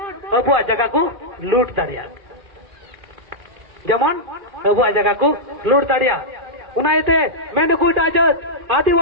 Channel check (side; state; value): left; late; 2.5 ms